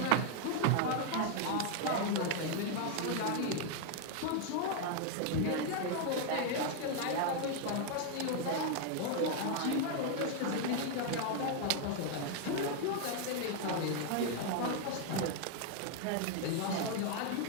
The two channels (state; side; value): different; both; correlation 0.00